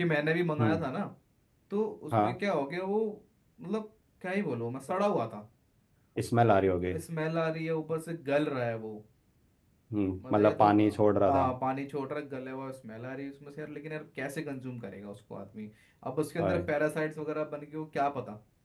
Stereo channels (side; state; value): both; identical; correlation 1.00